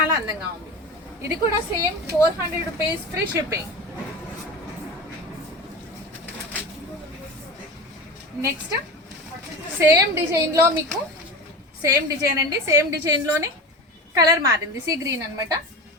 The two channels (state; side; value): normal; both; correlation 0.29